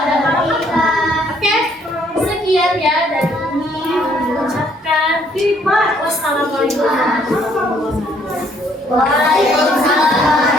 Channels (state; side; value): normal; both; correlation 0.65